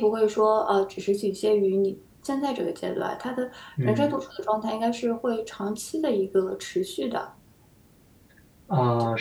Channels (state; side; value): identical; both; correlation 1.00